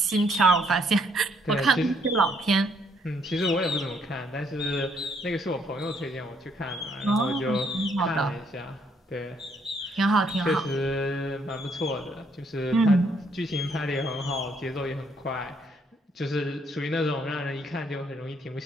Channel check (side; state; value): both; normal; correlation 0.69